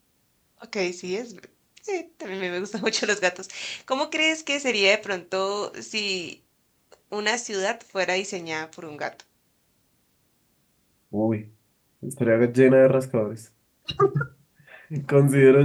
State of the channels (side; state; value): both; identical; correlation 1.00